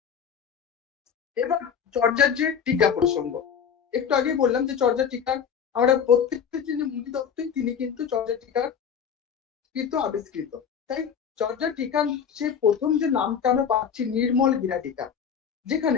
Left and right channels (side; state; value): right; quieter; 7.4 dB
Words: এবার চর্যার যে টিকা প্রসঙ্গ, একটু আগে বললাম যে চর্যা টিকার আমরা প্রত্যেকটা যিনি মুনি দত্তই তিনি কিন্তু চর্যা টিকার কৃত আবিষ্কৃত। তাই চর্যা টিকার যে প্রথম যে নামটা আমরা পাচ্ছি নির্মল গিরা টিকা,